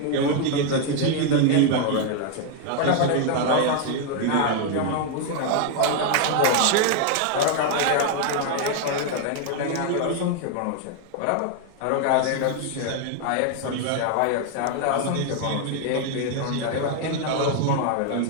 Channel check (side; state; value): both; different; correlation 0.00